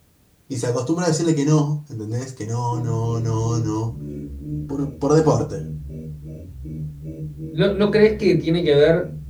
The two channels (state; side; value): identical; both; correlation 1.00